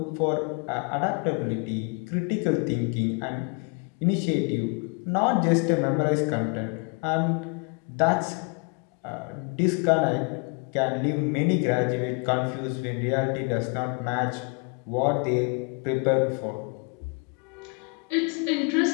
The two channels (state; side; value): quieter; right; 33.9 dB